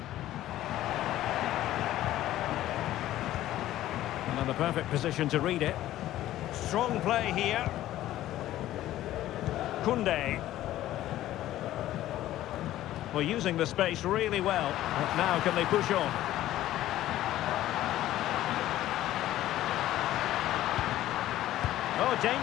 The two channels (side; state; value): right; quieter; 14.1 dB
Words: And the perfect position to read it. Strong play here. Koundé. Well, using the space really well. But now can they push on? Oh,